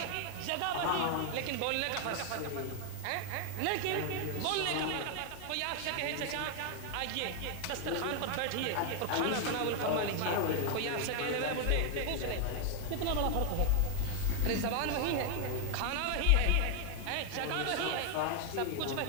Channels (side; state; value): both; different; correlation 0.00